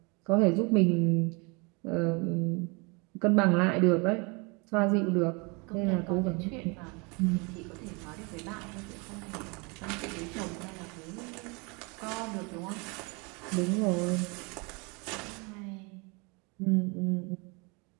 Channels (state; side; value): quieter; left; 30.1 dB